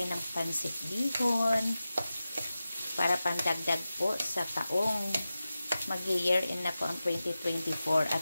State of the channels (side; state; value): both; inverted; correlation -0.94